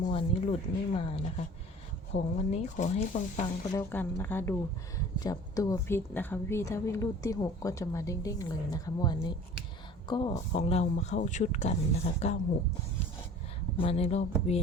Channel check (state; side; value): normal; both; correlation 0.45